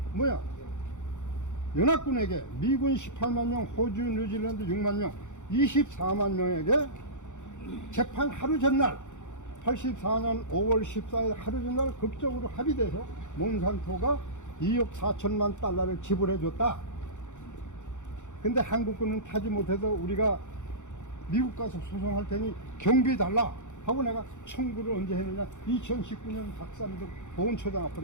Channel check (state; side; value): late; right; 0.85 ms